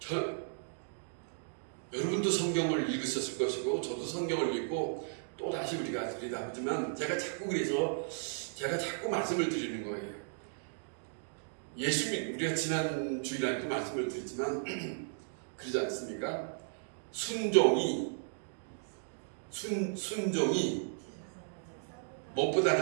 여러분도 성경을 읽으셨을 것이고 저도 성경을 읽고 또 다시 우리가 들여다보지만 제가 자꾸 말씀을 드리는 거예요. 우리가 지난 주일날도 말씀을 드렸지만 그러지 않습니까? 순종이 무엇보다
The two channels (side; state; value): left; silent; digital silence